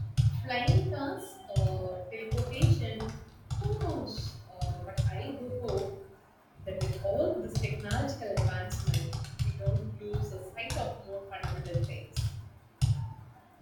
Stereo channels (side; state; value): both; identical; correlation 1.00